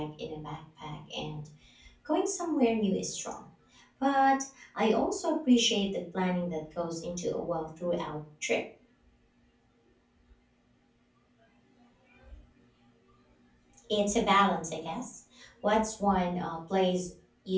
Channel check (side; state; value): both; identical; correlation 1.00